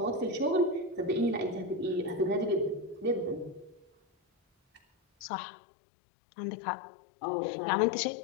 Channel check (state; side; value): drops out; right; at 5.3 s